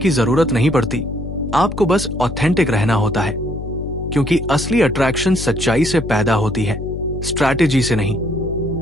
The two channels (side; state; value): left; noise; hum, 8 dB below the sound